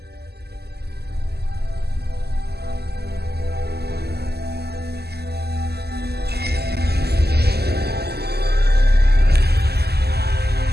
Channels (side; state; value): left; late; 0.47 ms